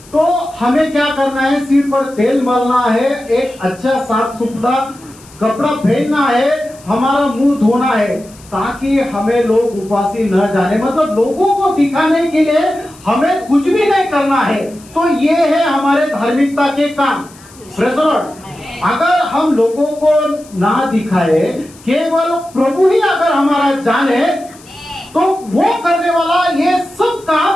तो हमें क्या करना है? सिर पर तेल मलना है, एक अच्छा साफ सुथरा कपड़ा पहनना है, हमारा मुंह धोना है, ताकि हमें लोग उपासी न जाने, मतलब लोगों को दिखाने के लिए हमें कुछ भी नहीं करना है। तो ये है हमारे धार्मिकता के काम। Praise the Lord. अगर हम लोगों को ना दिखाए, केवल प्रभु ही अगर हमारा जाने, तो वो करने वाला ये सब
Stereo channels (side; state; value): left; noise; hiss, 24 dB below the sound